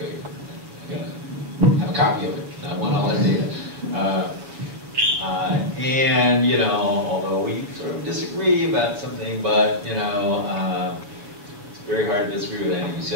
I gotta have a copy of it. I want all that data. And, you know, although we sort of disagree about something, but, you know, it's very hard to disagree with anything you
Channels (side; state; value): left; late; 7.2 ms